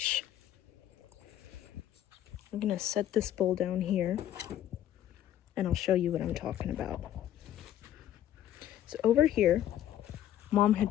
I'm gonna set this bowl down here and I'll show you what I'm talking about. So over here, Mom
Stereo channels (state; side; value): quieter; right; 11.7 dB